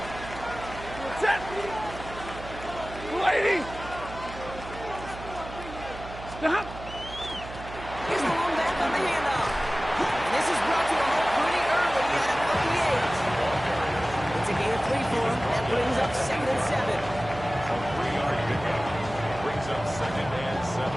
Set. Lady. Stop. Here's the one back on the handoff. And this is brought to a halt pretty early at about the 8. It's a gain of 3 for him. That brings up 2nd and 7. A 3-yard pickup. Brings up 2nd and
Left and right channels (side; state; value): right; noise; hum, 13 dB below the sound